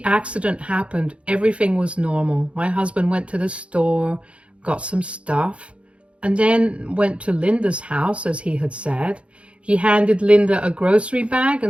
accident happened, everything was normal. My husband went to the store, got some stuff, and then went to Linda's house, as he had said. He handed Linda a grocery bag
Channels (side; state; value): left; late; 0.060 ms